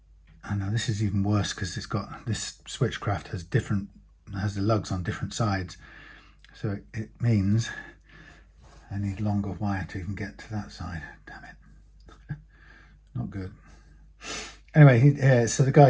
know this is even worse because it's got, this Switchcraft has the lugs on different sides. So it means I need longer wire to even get to that side. Damn it. Not good. Anyway, so the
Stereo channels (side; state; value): both; identical; correlation 1.00